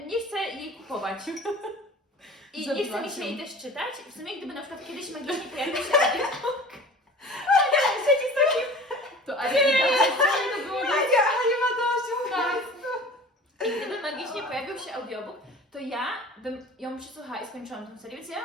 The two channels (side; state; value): both; normal; correlation 0.42